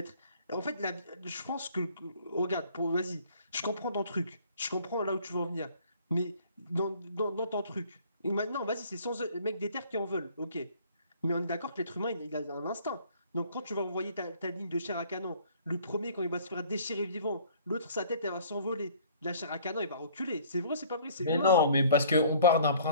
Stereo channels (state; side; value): inverted; both; correlation -0.55